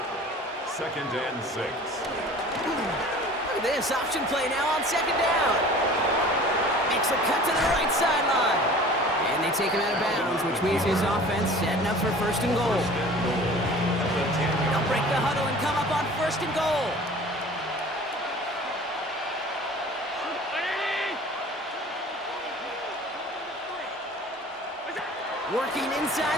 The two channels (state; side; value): normal; both; correlation 0.44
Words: Second and 6. Look at this option play now on second down. Makes a cut to the right sideline. And they take him out of bounds, which means his offense setting up for first and goal. They'll break the huddle and come up on first and goal. Working inside